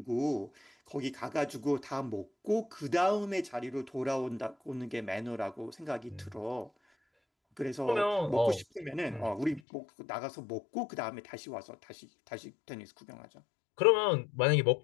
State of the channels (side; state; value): right; drops out; at 9.6 s